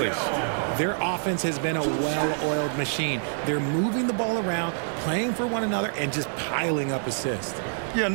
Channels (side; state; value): left; silent; digital silence